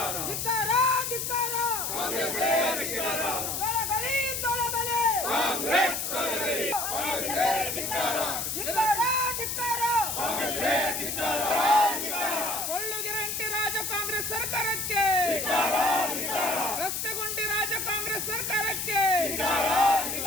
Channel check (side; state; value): left; noise; hiss, 2 dB below the sound